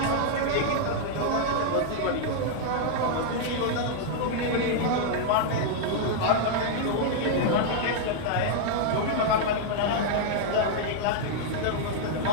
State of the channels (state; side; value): different; both; correlation -0.01